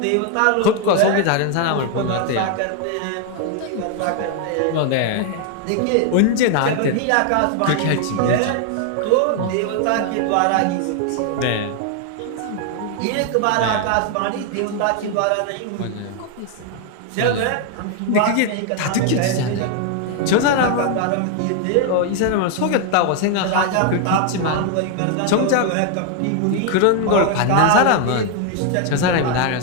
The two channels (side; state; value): both; different; correlation 0.00